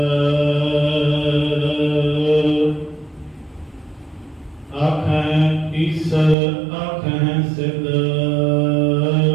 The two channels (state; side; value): drops out; left; at 6.4 s